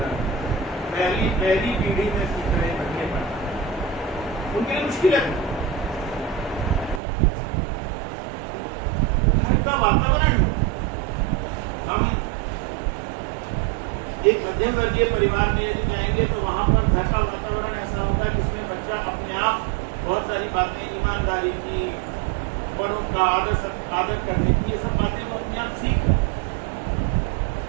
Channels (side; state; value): left; drops out; at 7.0 s